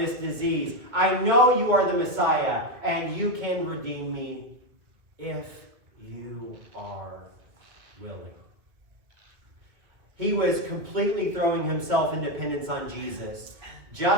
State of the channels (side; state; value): left; late; 2.1 ms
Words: disease. I know you are the Messiah, and you can redeem me if you are willing. He was completely throwing himself in dependence on Jesus,